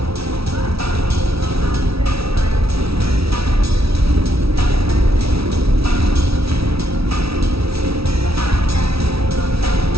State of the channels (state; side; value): late; left; 0.76 ms